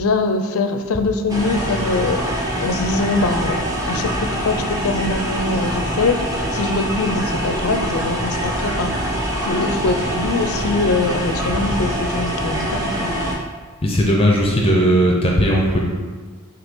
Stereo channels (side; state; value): both; normal; correlation 0.34